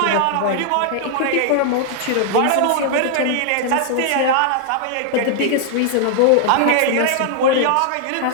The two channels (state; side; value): different; both; correlation -0.01